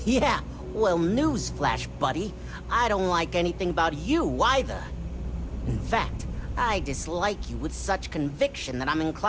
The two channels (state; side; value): identical; both; correlation 1.00